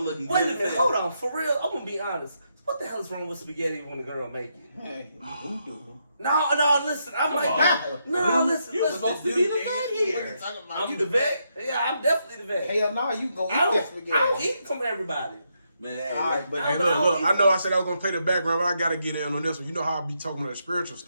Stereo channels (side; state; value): both; inverted; correlation -0.79